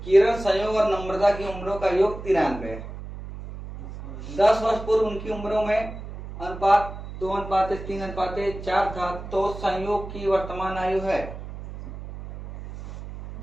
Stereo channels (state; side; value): noise; right; hum, 11 dB below the sound